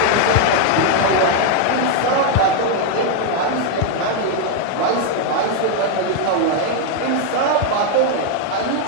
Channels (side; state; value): both; different; correlation 0.00